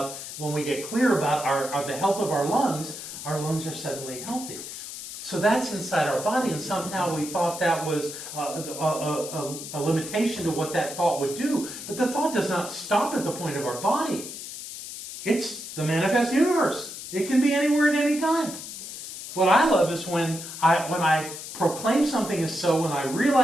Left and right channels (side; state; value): left; noise; hiss, 10 dB below the sound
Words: when we get clear about the health of our lungs are suddenly healthy. So that's inside our body, and somehow we thought that was a limitation to what that thought would do. But the thought does not stop at the point of our body. It's the manifest universe. It can be anywhere at any time. What I love is when I proclaim something is so, when I